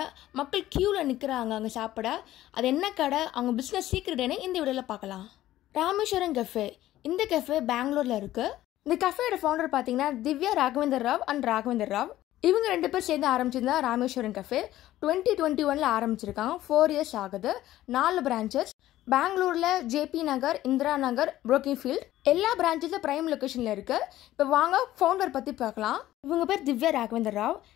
மக்கள் கியூல நிக்கிறாங்க அங்க சாப்பிட. அது என்ன கடை, அவங்க பிசினஸ் சீக்ரெட்னு இந்த வீடியோல பார்க்கலாம். ராமேஸ்வரம் கஃபே. இந்த கஃபே பெங்களூர்ல இருக்கு. இந்த கஃபேயோட ஃபவுண்டர் பாத்தீங்கன்னா திவ்யா ராகவேந்தர் ராவ் அண்ட் ராகவேந்தர் ராவ். இவங்க 2 பேர் சேர்ந்து ஆரம்பிச்சிருந்தா ராமேஸ்வரம் கஃபே 2021 ஆரம்பிச்சிருக்காங்க. 4 இயர்ஸ் ஆகுது. 4 பிரான்ச்சஸ் பெங்களூர்ல ஜேபி நகர், இந்திரா நகர், புரோக்கின்ஃபீல்ட் எல்லா பிரான்ச்சஸும் பிரைம் லொகேஷன்ல இருக்கு. இப்போ வாங்க ஃபவுண்டர் பத்தி பார்க்கலாம். இவங்க பேர் Divya Raghavendra Rao,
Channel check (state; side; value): quieter; right; 14.4 dB